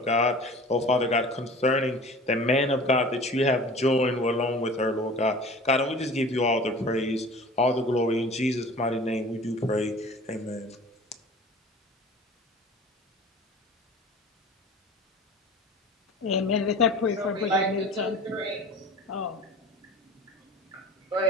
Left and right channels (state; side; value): normal; both; correlation 0.41